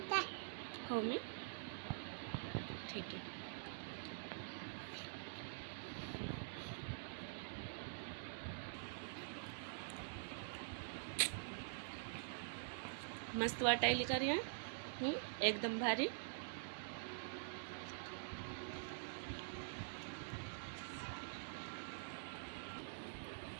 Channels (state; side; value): silent; left; digital silence